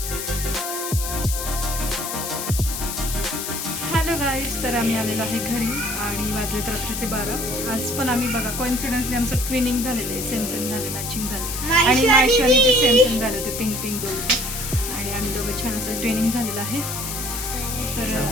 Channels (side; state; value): left; noise; hiss, 5 dB below the sound